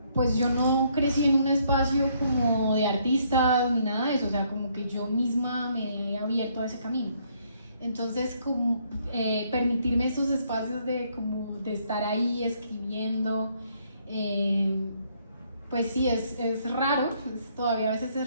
pues yo no crecí en un espacio como de artistas ni nada de eso, o sea, como que yo misma me he abierto a ese camino. Entonces, como, permitirme esos espacios de estar ahí escribiendo, pues sí, es raro, todavía a veces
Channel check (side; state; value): both; inverted; correlation -0.69